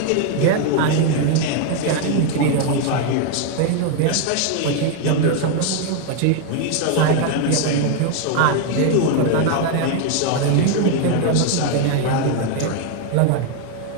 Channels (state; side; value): different; both; correlation 0.01